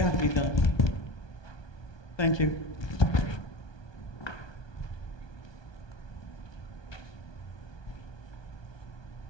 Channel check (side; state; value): right; late; 1.2 ms